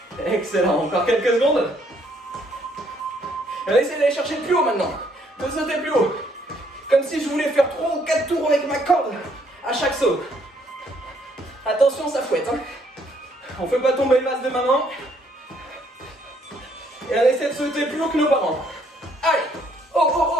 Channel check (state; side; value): normal; both; correlation 0.68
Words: Excellent, encore quelques secondes. Allez, essayez d'aller chercher plus haut maintenant. De sauter plus haut. Comme si je voulais faire 3 ou 4 tours avec ma corde à chaque saut. Attention, ça fouette. Hein. On ne fait pas tomber le vase de maman. Et on essaie de sauter plus haut que nos parents. Allez. Oh, oh,